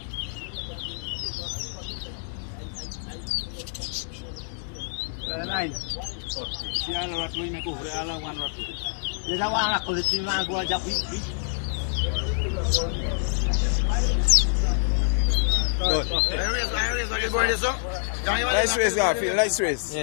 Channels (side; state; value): right; silent; digital silence